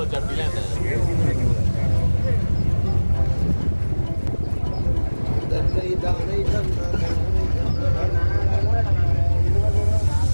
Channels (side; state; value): both; inverted; correlation -1.00